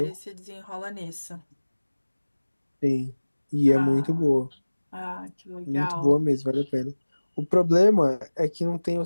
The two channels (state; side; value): inverted; both; correlation -1.00